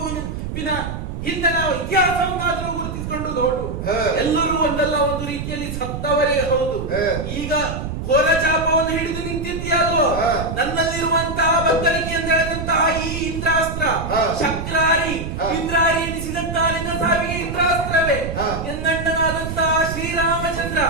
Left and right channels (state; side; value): noise; right; rumble, 6 dB below the sound